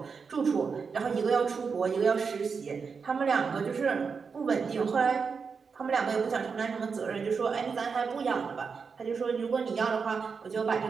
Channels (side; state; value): left; quieter; 5.5 dB